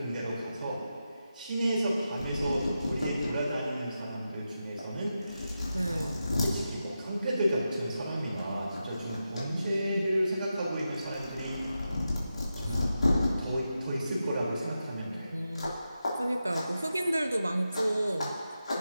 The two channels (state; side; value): inverted; both; correlation -0.89